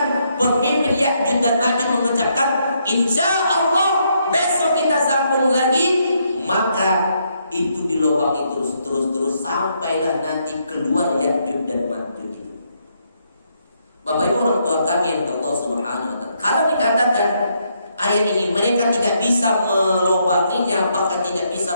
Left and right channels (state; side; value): inverted; both; correlation -0.75